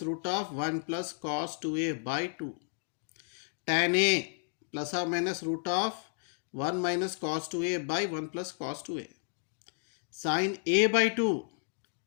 root of 1 plus cos 2A by 2. Tan A plus or minus root of 1 minus cos 2A by 1 plus cos 2A. Sin A by 2,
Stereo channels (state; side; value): silent; right; 56 dB below the other